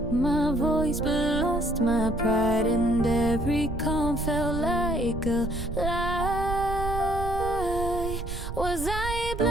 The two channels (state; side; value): noise; right; rumble, 6 dB below the sound